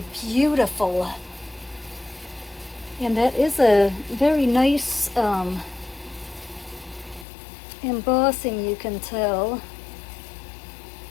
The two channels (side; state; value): right; drops out; at 7.2 s